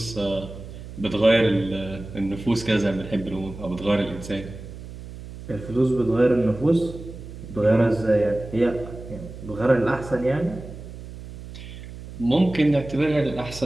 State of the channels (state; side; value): noise; right; hum, 13 dB below the sound